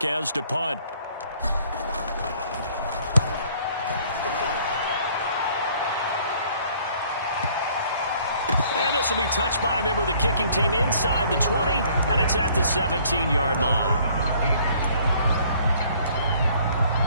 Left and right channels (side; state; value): both; inverted; correlation -0.59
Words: to punt. And this will be touched by a member of the kicking team inside the 20, and it's at the 17-yard line.